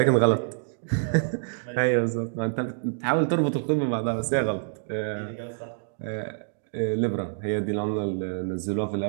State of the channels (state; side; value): silent; left; digital silence